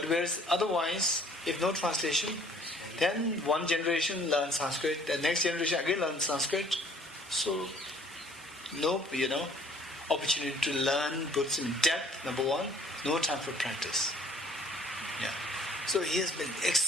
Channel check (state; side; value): normal; both; correlation 0.56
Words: whereas otherwise, if no translation, then one generation learns Sanskrit, the next generation again learns Sanskrit. So, no, opportunity to learn Buddhism in depth, number one, no time for practice. Yeah. So he has been